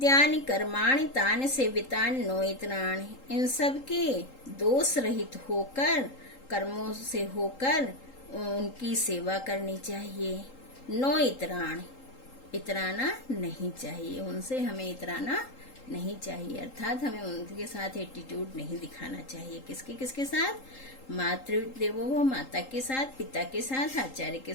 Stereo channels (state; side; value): late; right; 3.8 ms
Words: कर्माणि तानि सेवितानि नोइत्राणि, इन सब के दोष रहित होकर, कर्मों से होकर उनकी सेवा करनी चाहिए। नो इतराण, इतराना नहीं चाहिए, उनसे हमें इतराना नहीं चाहिए, अर्थात हमें उनके साथ एटीट्यूड नहीं दिखाना चाहिए। किसके साथ? मातृदेवो भव, माता के साथ, पिता के साथ, आचार्य के